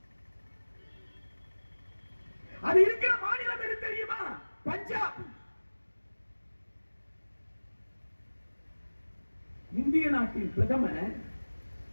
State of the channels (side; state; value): both; inverted; correlation -1.00